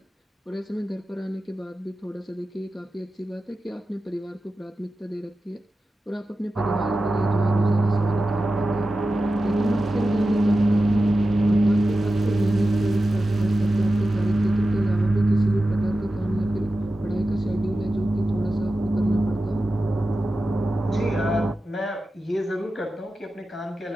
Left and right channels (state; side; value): normal; both; correlation 0.93